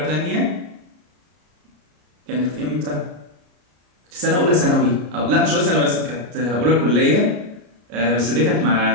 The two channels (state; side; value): late; left; 33 ms